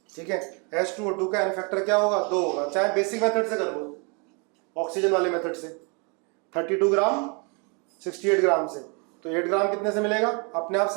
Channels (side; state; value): left; quieter; 34.2 dB